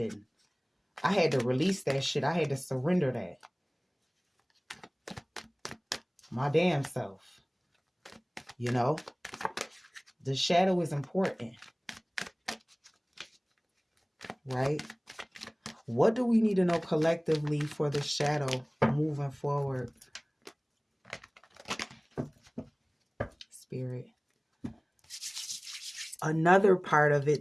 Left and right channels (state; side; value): identical; both; correlation 1.00